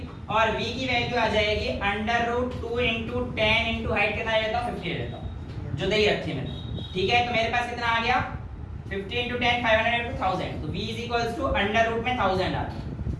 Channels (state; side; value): identical; both; correlation 1.00